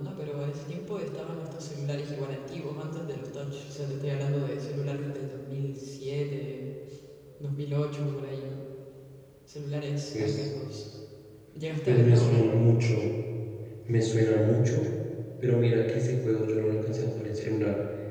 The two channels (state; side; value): identical; both; correlation 1.00